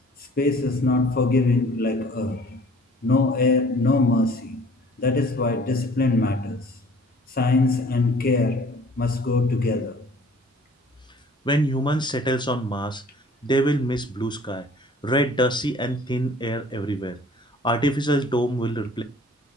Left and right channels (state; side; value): normal; both; correlation 0.51